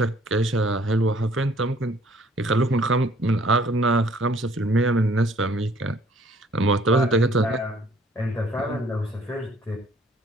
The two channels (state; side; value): normal; both; correlation 0.59